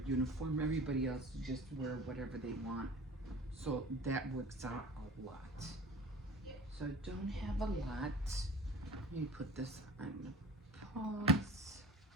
uniform. Everybody else just wear whatever they want. So that works out a lot. So I don't have a lot. Let me put this on pause.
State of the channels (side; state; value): both; normal; correlation 0.40